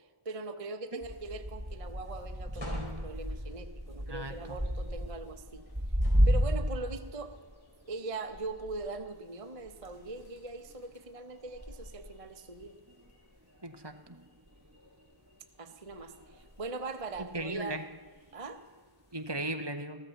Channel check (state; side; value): late; left; 1.5 ms